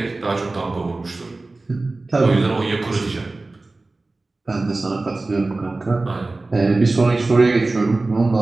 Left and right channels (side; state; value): left; quieter; 3.2 dB